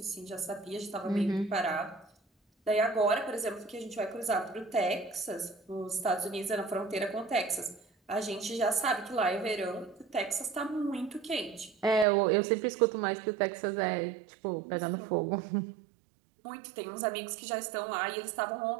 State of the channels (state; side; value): drops out; left; at 12.1 s